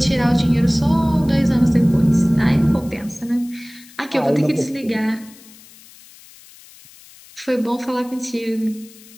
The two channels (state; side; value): noise; left; hiss, 23 dB below the sound